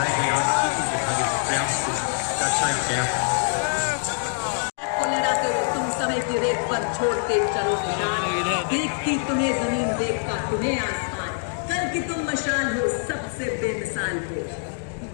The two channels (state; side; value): silent; right; 62 dB below the other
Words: गए 8 चीतों के भाग्य प्रयास को दर्शाया गया है। तुम समय की रेत पर छोड़ते चलो निशान, देखती तुम्हें जमीन, देखता तुम्हें आसमान, कल की तुम मशाल हो, सबसे बेमिसाल हो।